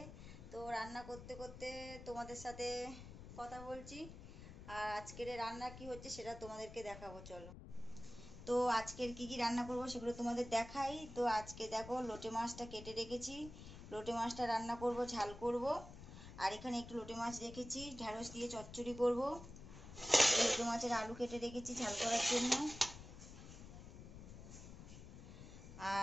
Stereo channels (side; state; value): left; noise; rumble, 13 dB below the sound